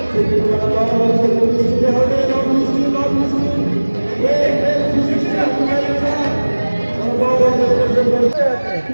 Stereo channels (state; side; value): inverted; both; correlation -1.00